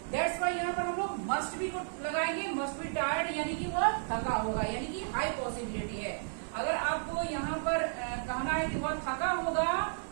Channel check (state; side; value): silent; left; digital silence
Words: That's why यहाँ पर हम लोग मस्ट बी को लगाएंगे, मस्ट बी टायर्ड, यानी कि वह थका होगा, यानी कि हाई पॉसिबिलिटी है। अगर आपको यहाँ पर कहना है कि वह थका होगा